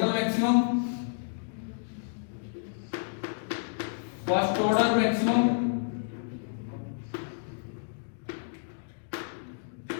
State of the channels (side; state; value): right; silent; digital silence